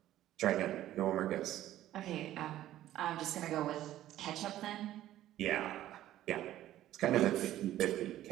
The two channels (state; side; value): quieter; left; 13.4 dB